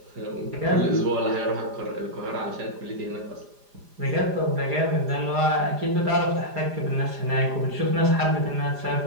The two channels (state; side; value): late; left; 4.9 ms